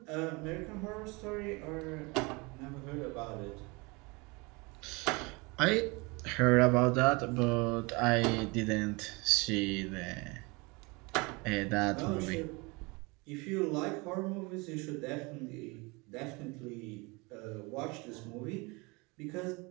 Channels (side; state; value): left; quieter; 26.9 dB